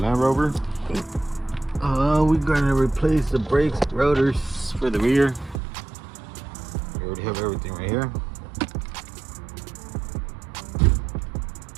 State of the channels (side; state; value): left; drops out; at 5.6 s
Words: Rover. We're gonna replace the brakes, rotors for the rear. We already have everything right here.